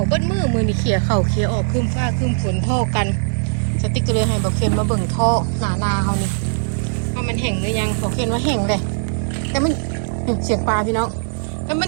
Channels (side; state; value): left; silent; 65 dB below the other